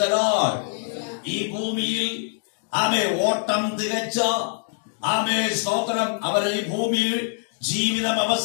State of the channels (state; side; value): silent; right; digital silence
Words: the Lord. ഈ ഭൂമിയിൽ ഓട്ടം തികച്ച സ്തോത്രം അവർ ഈ ഭൂമിയിൽ ജീവിതം